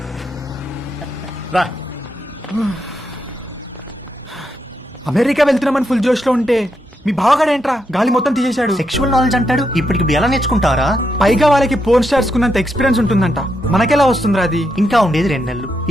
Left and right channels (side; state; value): both; normal; correlation 0.81